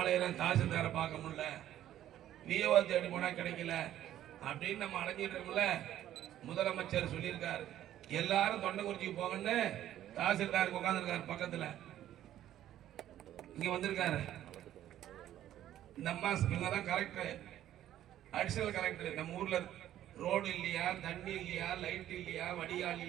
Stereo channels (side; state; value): left; quieter; 12.2 dB